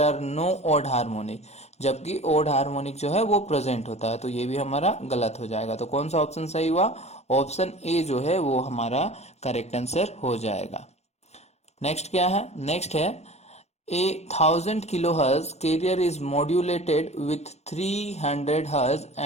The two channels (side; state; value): right; late; 0.31 ms